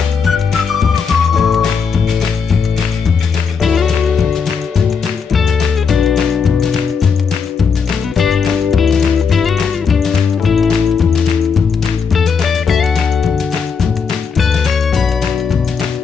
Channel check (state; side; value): quieter; right; 5.9 dB